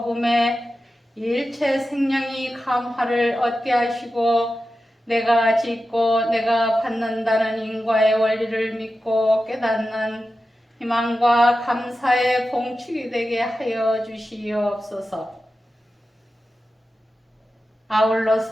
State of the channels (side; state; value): both; normal; correlation 0.92